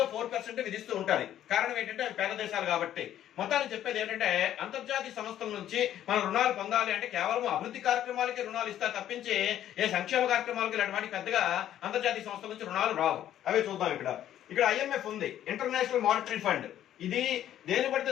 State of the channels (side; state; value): right; quieter; 11.6 dB